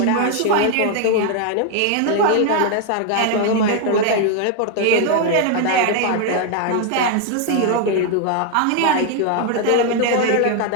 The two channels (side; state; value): both; different; correlation 0.00